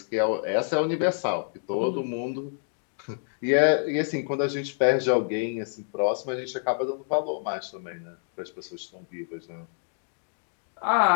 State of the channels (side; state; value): right; silent; digital silence